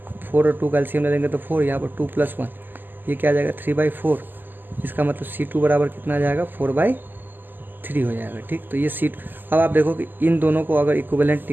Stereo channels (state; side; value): late; left; 0.090 ms